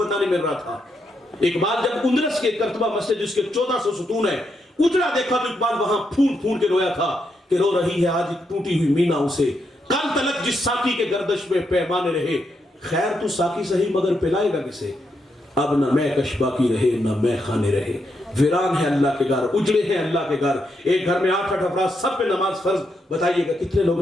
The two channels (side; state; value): both; normal; correlation 0.81